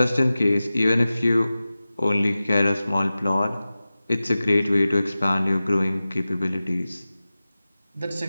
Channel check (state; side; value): inverted; both; correlation -0.96